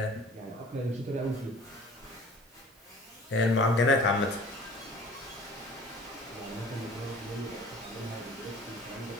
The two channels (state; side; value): normal; both; correlation 0.47